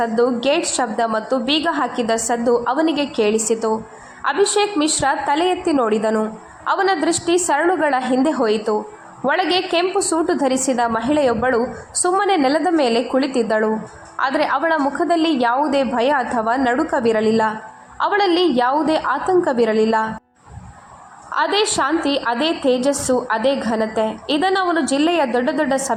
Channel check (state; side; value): identical; both; correlation 1.00